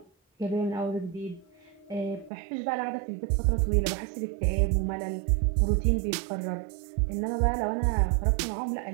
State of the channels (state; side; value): drops out; left; at 2.3 s